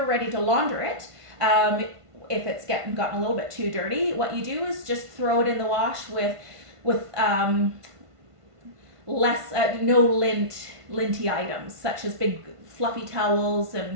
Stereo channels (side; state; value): left; late; 1.5 ms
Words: ready to launder it, if it's gotten a little bit too dirty, what you do is just throw it in the wash with no linty items, such as big fluffy towels